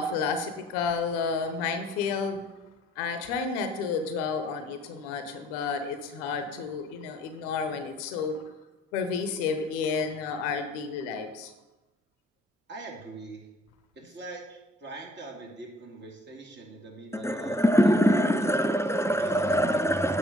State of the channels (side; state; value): both; normal; correlation 0.57